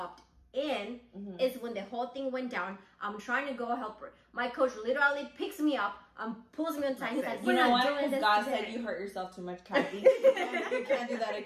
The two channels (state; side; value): identical; both; correlation 1.00